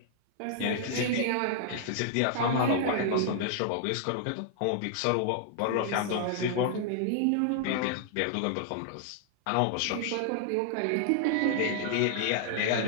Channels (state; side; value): different; both; correlation -0.01